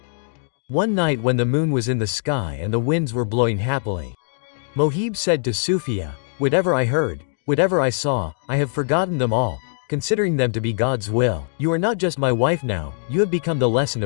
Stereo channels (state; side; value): silent; right; digital silence